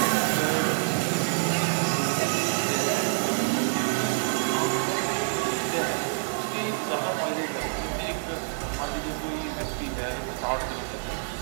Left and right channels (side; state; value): left; silent; digital silence